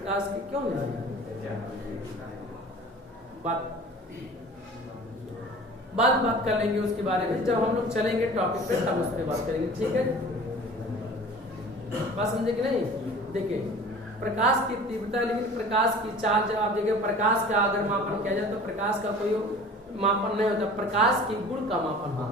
की क्यों नहीं बात कर लेंगे उसके बारे में, जब हम लोग चलेंगे टॉपिक पे तब उस पर बात करेंगे, ठीक है। बात समझे कि नहीं? देखिए प्रकाश की तीव्रता, लेकिन प्रकाश की चाल जब आप देखिए, प्रकाश का अगर मापन किया जाए तो प्रकाश का कोई मापन नहीं होता, प्रकाश की गुण का मापन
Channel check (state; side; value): normal; both; correlation 0.43